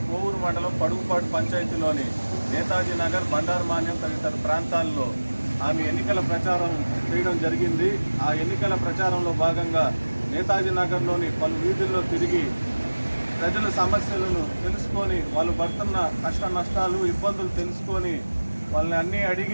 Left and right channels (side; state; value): both; inverted; correlation -1.00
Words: కోవూరు మండలం పడుగుపాటు పంచాయతీలోని నేతాజీ నగర్, బండారు మాన్యం తదితర ప్రాంతాల్లో ఆమె ఎన్నికల ప్రచారం చేయడం జరిగింది. ఆ ఎన్నికల ప్రచారంలో భాగంగా నేతాజీ నగర్లోని పలు వీధుల్లో తిరిగి ప్రజల సమస్యలను తెలుసుకొని, వాళ్ళు పడుతున్న కష్ట నష్టాలు, ఇబ్బందులు తెలుసుకొని వాళ్ళని అన్నీ